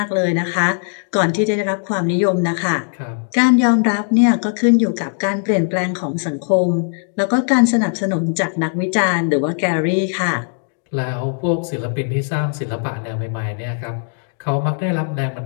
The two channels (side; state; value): right; silent; 60 dB below the other